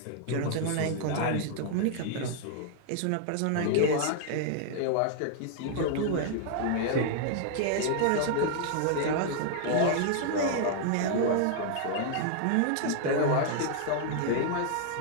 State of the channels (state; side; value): different; both; correlation -0.01